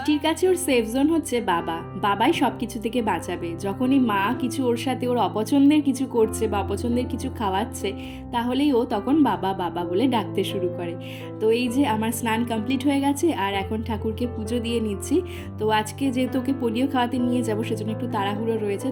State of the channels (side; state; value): both; identical; correlation 1.00